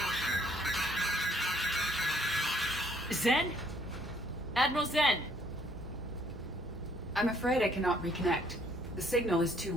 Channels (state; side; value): normal; both; correlation 0.65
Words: Zen? Admiral Zen! I'm afraid I cannot reconnect. The signal is too